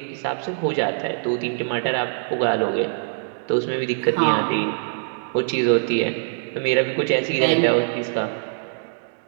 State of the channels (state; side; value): silent; left; digital silence